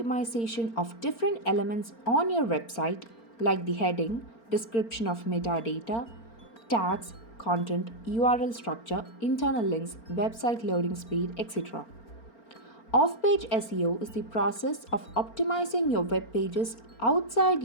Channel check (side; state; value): right; late; 4.4 ms